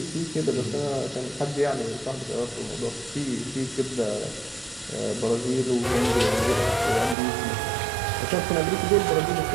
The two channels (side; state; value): left; drops out; at 7.2 s